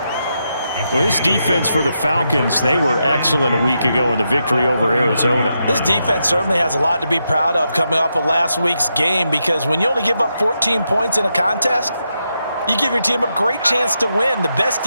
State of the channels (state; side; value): inverted; both; correlation -0.84